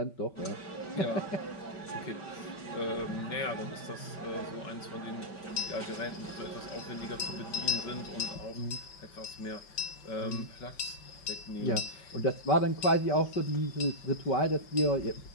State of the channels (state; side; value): late; right; 5.2 ms